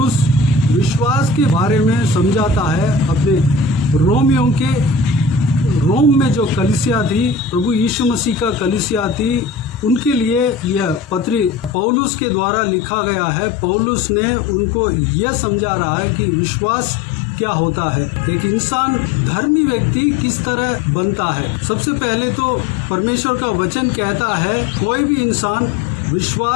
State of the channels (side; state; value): right; drops out; at 11.8 s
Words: विश्वास के बारे में समझाता है अपने रोमियों के रोम में जो कलीसिया थी, प्रभु यीशु मसीह का कलीसिया थी, उनके लिए यह पत्री पौलुस के द्वारा लिखा गया है। पौलुस ने उनको यह समझा रहा है कि विश्वास क्या होता है, एक इंसान धर्मी व्यक्ति किस तरह बनता है। सबसे पहले तो परमेश्वर का वचन कहता है कोई भी इंसान